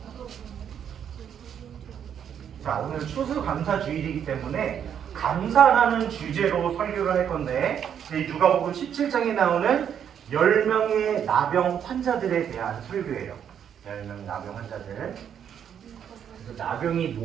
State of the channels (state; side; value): quieter; left; 8.7 dB